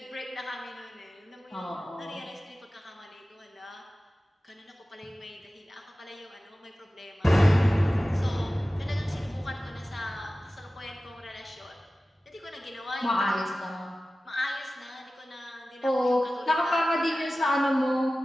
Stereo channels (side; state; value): both; normal; correlation 0.96